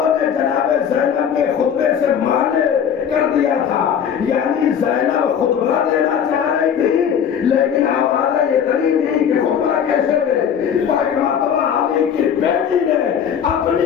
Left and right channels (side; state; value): right; quieter; 8.1 dB